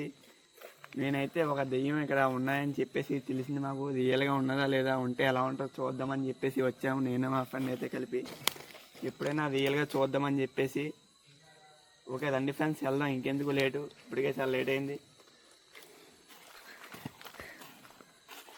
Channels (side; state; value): both; identical; correlation 1.00